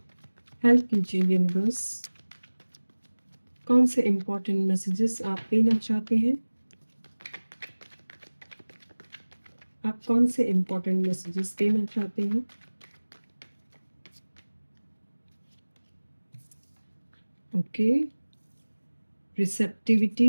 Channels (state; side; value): inverted; both; correlation -1.00